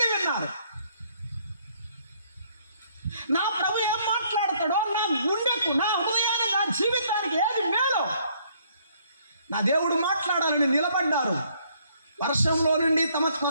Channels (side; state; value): both; inverted; correlation -0.65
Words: విన్నారు. నా ప్రభు ఏం మాట్లాడతాడో, నా గుండెకు, నా హృదయానికి, నా జీవితానికి ఏది మేలో నా దేవుడు మాట్లాడాలని నిలబడ్డారు. వర్షంలో నుండి తమ